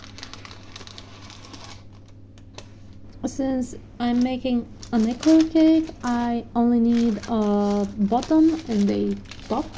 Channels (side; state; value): both; identical; correlation 1.00